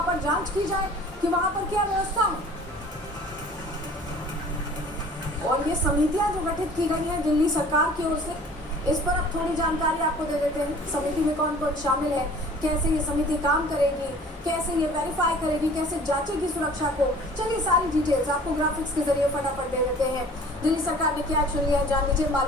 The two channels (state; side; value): normal; both; correlation 0.48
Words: पर जांच की जाए कि वहां पर क्या व्यवस्था है। और ये समितियां जो गठित की गई हैं दिल्ली सरकार की ओर से, इस पर अब थोड़ी जानकारी आपको दे देते हैं। समिति में कौन कौन शामिल है, कैसे ये समिति काम करेगी, कैसे ये वेरीफाई करेगी, कैसे जांचेगी सुरक्षा को। चलिए सारी डिटेल्स आपको ग्राफिक्स के जरिए फटाफट दे देते हैं। दिल्ली सरकार ने क्या एक्शन लिया जान लीजिए।